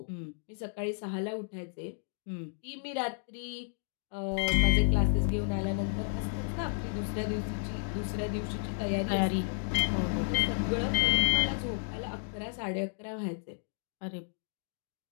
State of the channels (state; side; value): silent; right; digital silence